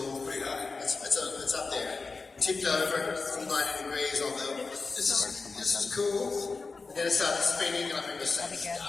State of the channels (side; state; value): right; quieter; 4.2 dB